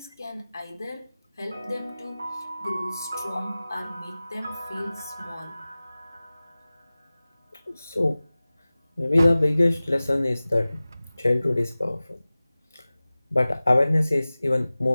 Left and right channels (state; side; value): inverted; both; correlation -0.98